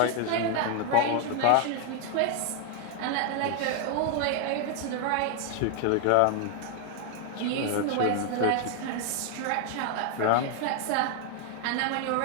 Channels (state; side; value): different; both; correlation 0.00